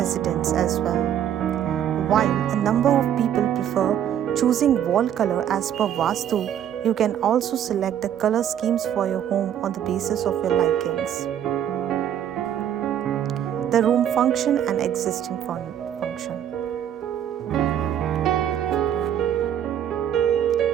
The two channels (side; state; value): left; quieter; 10.0 dB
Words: as well. While a number of people prefer choosing wall color as per Vastu, you can also select the color schemes for your home on the basis of your likings. The room function and existing function.